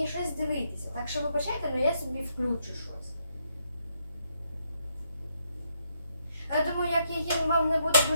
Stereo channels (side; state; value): both; inverted; correlation -0.76